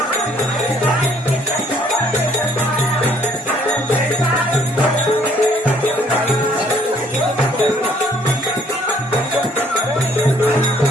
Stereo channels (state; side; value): normal; both; correlation 0.61